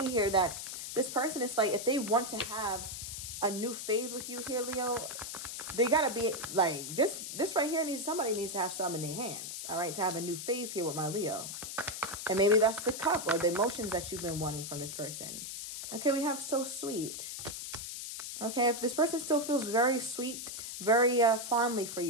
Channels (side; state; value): left; noise; hiss, 7 dB below the sound